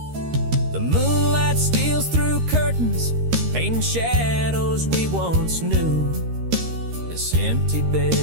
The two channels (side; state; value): left; late; 13 ms